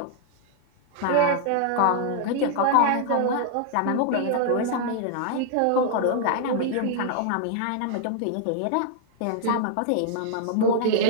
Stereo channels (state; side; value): different; both; correlation 0.00